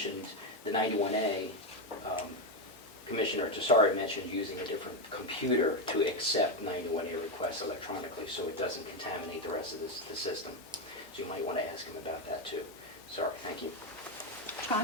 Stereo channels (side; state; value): both; normal; correlation 0.09